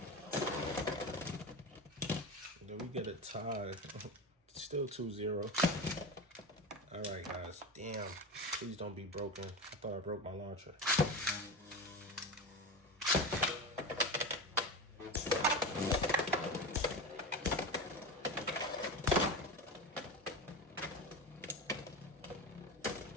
Get a tie. Still 2-0. All right, guys. Damn. Please don't be broken. I thought I broke my launcher.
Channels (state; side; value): normal; both; correlation 0.23